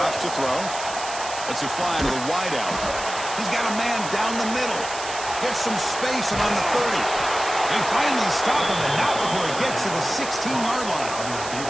to throw. Lets it fly to the wideout. He's got a man down the middle. Gets some space and on the 30. They finally stop him, and not before he gets to the 16-yard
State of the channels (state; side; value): noise; right; hiss, 9 dB below the sound